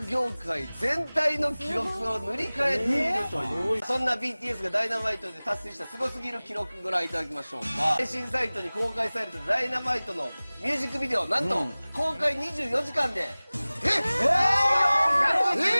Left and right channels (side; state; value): both; inverted; correlation -0.99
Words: 業界全体の記録を塗り替えているという、そんな BTS がダイナマイトで達成したすごすぎる記録ご覧いただきましょう。配信サイトに公開されたダイナマイトのミュージックビデオ、なんと公開24時間で110